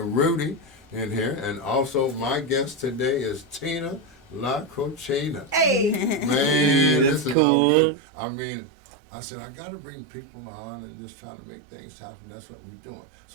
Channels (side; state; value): left; drops out; at 7.4 s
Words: Rudy in here, and also my guest today is Tina La Cochina. Hey! Man, this is cool. all good. I mean, I said, I got to bring people on and just try to make things happen. That's what we're doing.